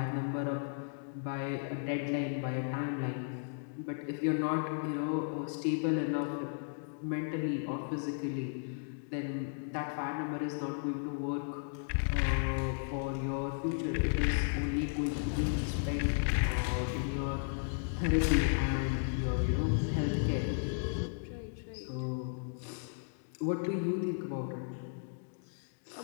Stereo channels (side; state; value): right; silent; digital silence